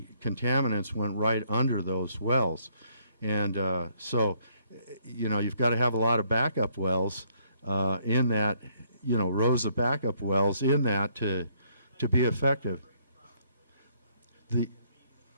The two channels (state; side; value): inverted; both; correlation -0.68